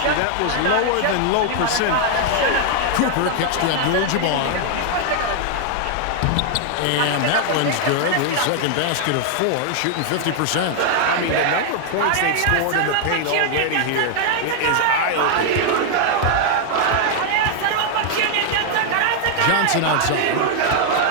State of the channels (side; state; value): both; different; correlation 0.00